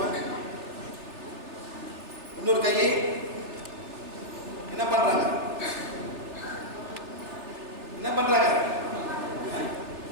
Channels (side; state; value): left; late; 3.4 ms